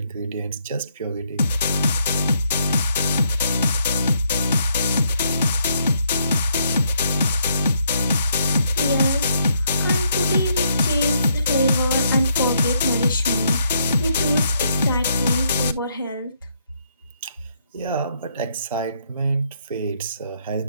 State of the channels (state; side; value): inverted; both; correlation -0.73